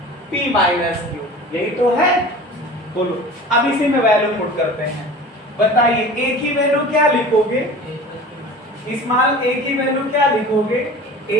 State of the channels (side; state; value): both; normal; correlation 0.39